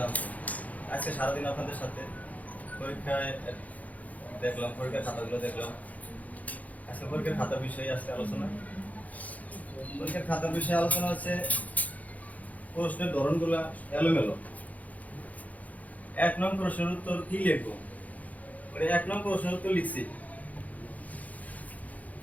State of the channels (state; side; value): late; right; 0.075 ms